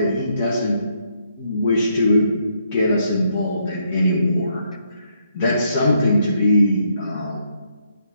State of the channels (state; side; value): inverted; both; correlation -0.74